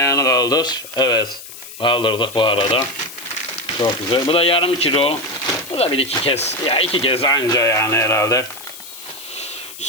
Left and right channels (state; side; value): noise; left; hiss, 14 dB below the sound